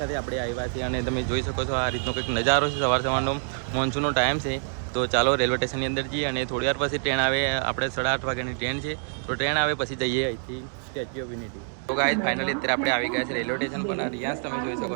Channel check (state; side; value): silent; left; 61 dB below the other